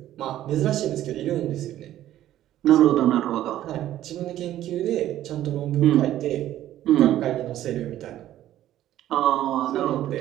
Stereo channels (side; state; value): left; quieter; 13.0 dB